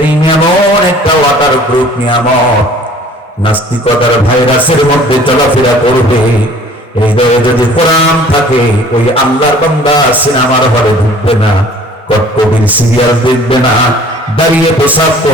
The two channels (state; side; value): normal; both; correlation 0.51